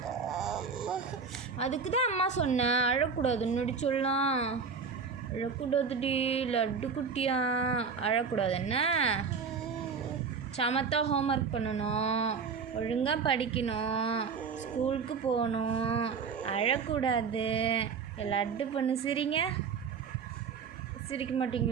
அதுக்கு தான் அம்மா சொன்னேன் அழக்கூடாது. முன்னாடி சொல்லலாம், அழக்கூடாதுடி லட்டு குட்டியா, அழக்கூடாது. என்ன சமத்தா ஹோம்ஒர்க் பண்ணணும், ஒழுங்காக படிக்கணும், ஸ்கூலுக்கு போகணும், அழக்கூடாது. லட்டு பண்ணு. சிரிங்க. சிரிக்க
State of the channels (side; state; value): left; quieter; 5.6 dB